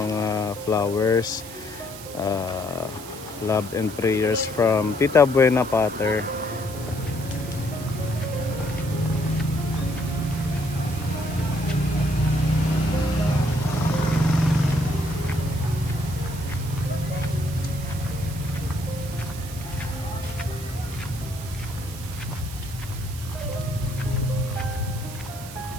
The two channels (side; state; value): right; noise; hiss, 14 dB below the sound